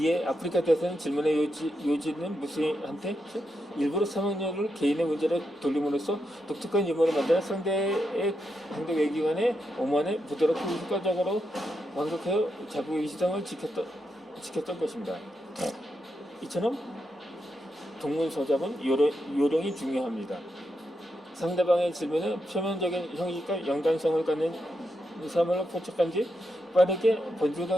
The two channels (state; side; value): normal; both; correlation 0.84